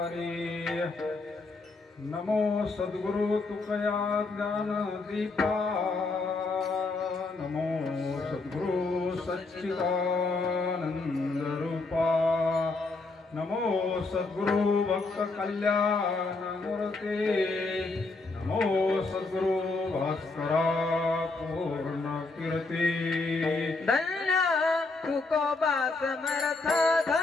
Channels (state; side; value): quieter; right; 3.6 dB